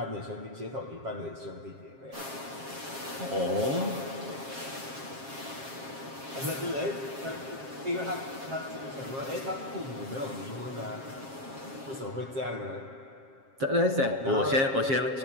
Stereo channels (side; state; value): left; late; 7.4 ms